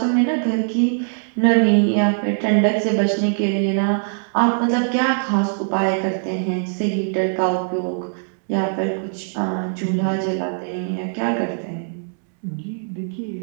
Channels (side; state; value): left; silent; digital silence